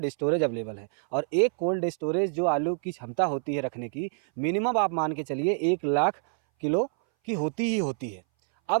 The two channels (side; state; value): left; silent; 59 dB below the other